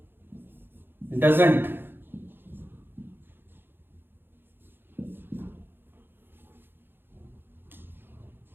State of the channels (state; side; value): late; left; 0.10 ms